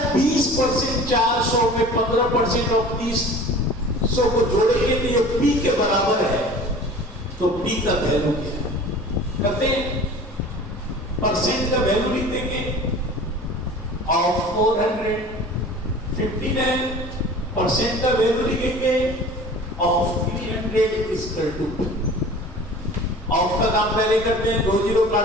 20% 400 में 15% ऑफ 300 को जोड़ेंगे तो ये P के बराबर है, तो P का वैल्यू क्या है? कहते हैं परसेंट का वैल्यू लिख देंगे ऑफ 400, 59% का वैल्यू लिखेंगे of 300 equal to P। Of का काम पहले करते हैं, 2 जीरो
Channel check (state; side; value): normal; both; correlation 0.42